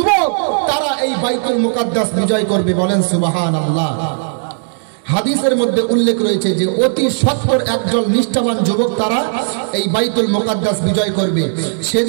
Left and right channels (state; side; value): silent; left; digital silence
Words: তারা এই বাইতুল মুকাদ্দাস বিজয় করবে, বলেন সুবহানাল্লাহ। হাদিসের মধ্যে উল্লেখ রয়েছে যে অতি সত্বর একজন নিষ্ঠাবান যুবক তারা এই বাইতুল মুকাদ্দাস বিজয় করবে।